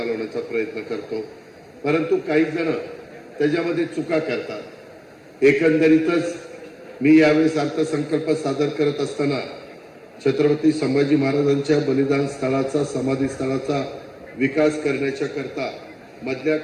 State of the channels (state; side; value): identical; both; correlation 1.00